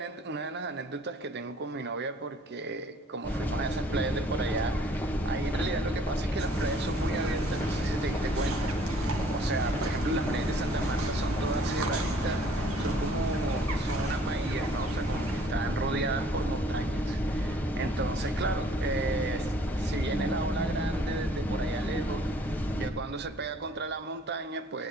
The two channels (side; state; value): both; normal; correlation 0.57